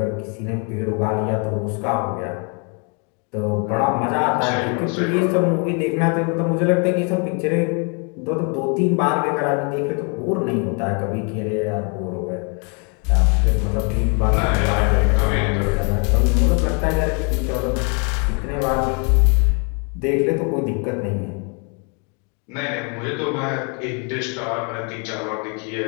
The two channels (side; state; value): right; quieter; 36.6 dB